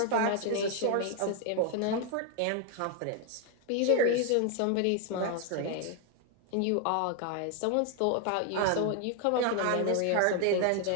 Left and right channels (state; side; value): different; both; correlation 0.00